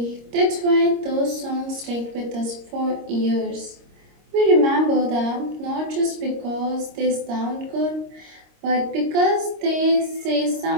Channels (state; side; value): late; left; 26 ms